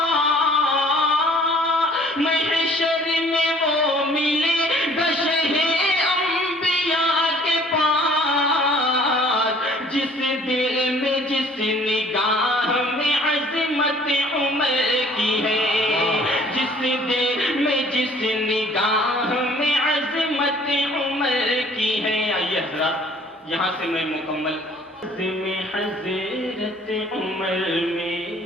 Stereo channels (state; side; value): normal; both; correlation 0.55